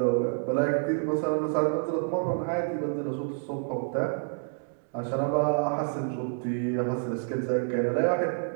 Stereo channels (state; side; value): silent; left; digital silence